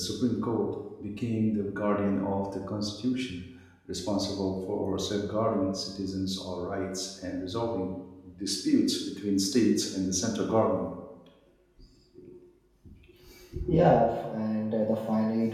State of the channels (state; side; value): identical; both; correlation 1.00